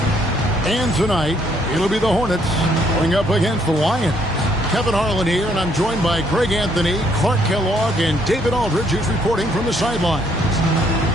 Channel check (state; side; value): normal; both; correlation 0.68